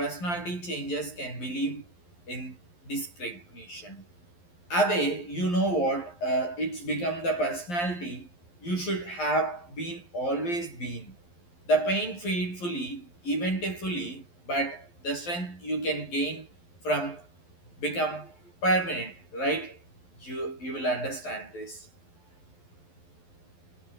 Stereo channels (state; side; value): late; right; 11 ms